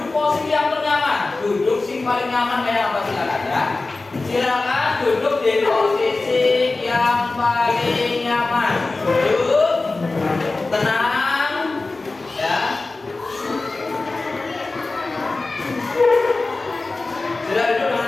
posisi yang ternyaman. Duduk sing paling nyaman kayak apa silakan ya. Silakan duduk di posisi yang paling nyaman. Duduk tenang ya. Sudah duduk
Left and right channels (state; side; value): quieter; right; 3.4 dB